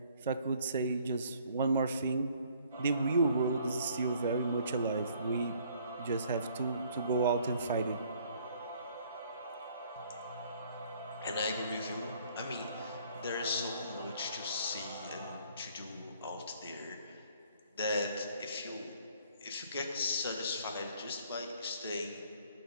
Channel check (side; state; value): both; inverted; correlation -0.60